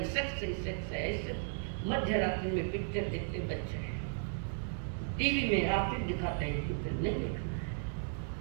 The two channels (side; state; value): left; silent; digital silence